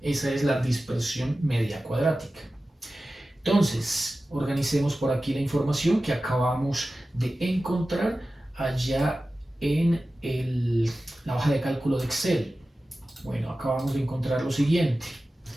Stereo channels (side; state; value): both; normal; correlation 0.95